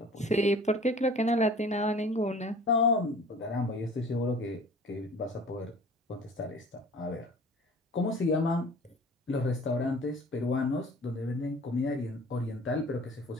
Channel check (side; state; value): both; normal; correlation 0.45